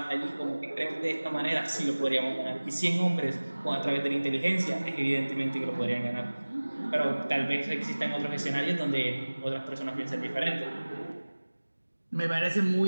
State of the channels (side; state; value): both; inverted; correlation -1.00